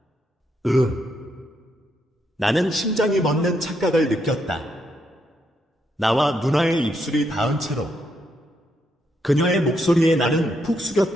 나는 심장이 멎는 착각을 느꼈다. 나와 누나의 입술이 닿은 채로 그녀의 목소리에 나는 푹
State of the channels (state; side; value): normal; both; correlation 0.78